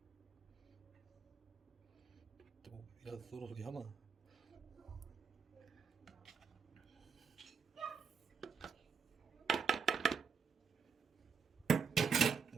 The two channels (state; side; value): quieter; left; 6.2 dB